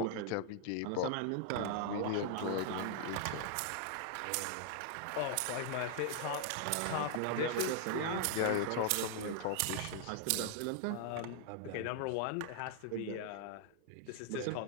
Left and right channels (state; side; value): different; both; correlation -0.01